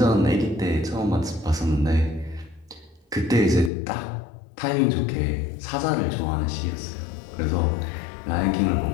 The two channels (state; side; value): drops out; right; at 3.7 s